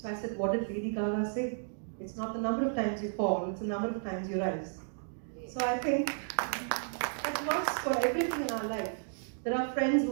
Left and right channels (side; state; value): left; silent; digital silence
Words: I said, what did Lady Gaga say? It's not the number of times you fall, it's the number of times you rise. So I think that works for everything in our life. There are friends who